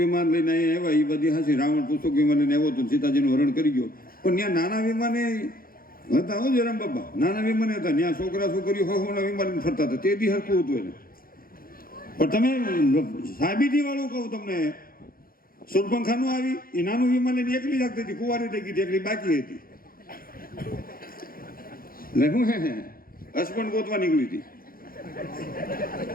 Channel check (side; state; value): right; late; 0.42 ms